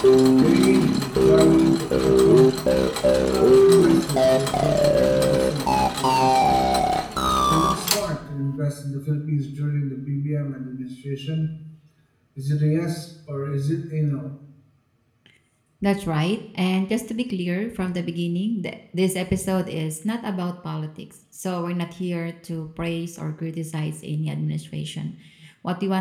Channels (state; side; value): identical; both; correlation 1.00